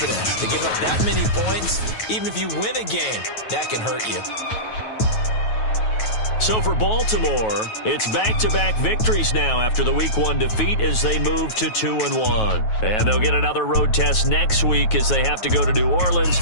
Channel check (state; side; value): late; right; 9.3 ms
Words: To give up that many points, even if you win a game, that can hurt you. So for Baltimore, it's back-to-back victories now after the Week 1 defeat as they move to 2-1. And they'll get another road test next week as they have to go to New Orleans